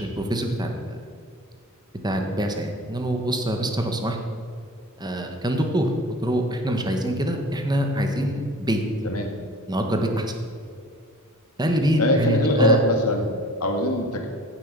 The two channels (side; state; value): both; normal; correlation 0.44